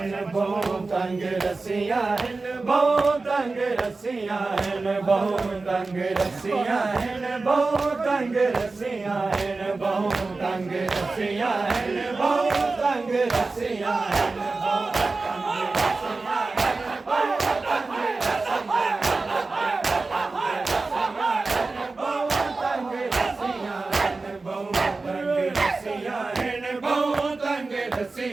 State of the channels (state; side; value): quieter; left; 3.7 dB